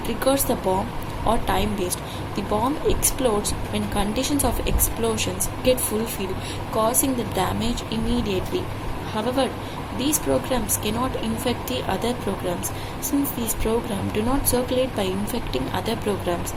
the bomb or time based. The bomb explodes when conditions of explosions get fulfilled, causing the damage immediately. However, these programs cannot infect the other programs. Since these programs do not circulate by infecting other programs,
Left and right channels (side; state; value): both; identical; correlation 1.00